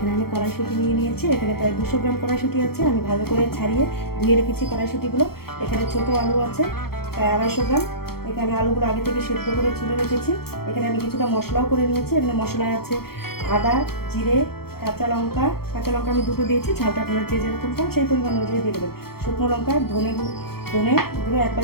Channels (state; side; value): late; right; 0.95 ms